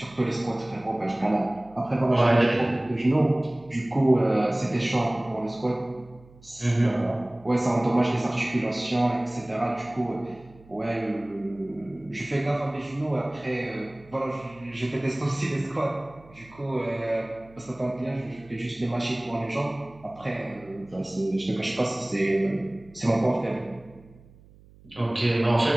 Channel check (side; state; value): right; noise; hum, 25 dB below the sound